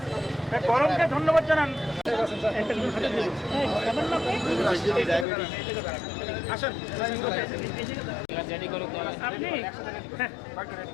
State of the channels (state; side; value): drops out; right; at 5.2 s